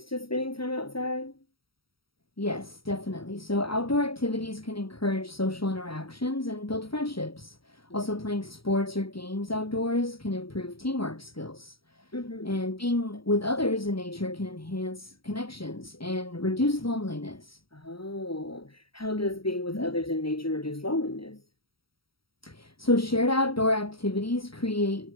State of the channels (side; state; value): right; late; 0.75 ms